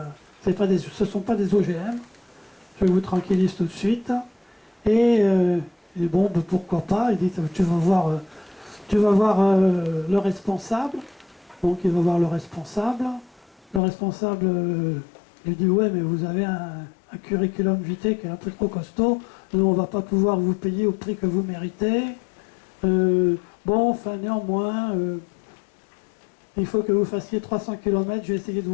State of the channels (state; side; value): drops out; right; at 13.8 s